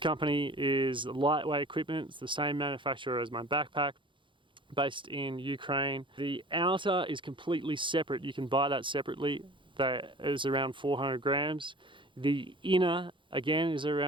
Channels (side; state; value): left; late; 0.24 ms